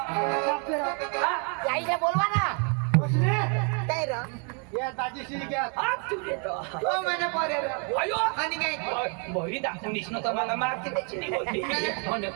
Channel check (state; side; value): quieter; left; 38.3 dB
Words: आईला बोलवा ना काय रे या दाजीशी घ्या हात तू देतो हो मैंने पोरे रे अयो आणि काय बहिरी दाखवून दिसणं तर मला मागते त्याची नाही होती म्हणलं